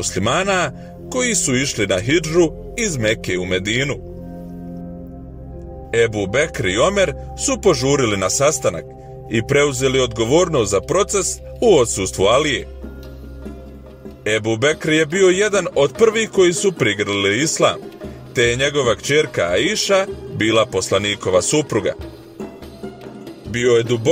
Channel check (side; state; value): both; identical; correlation 1.00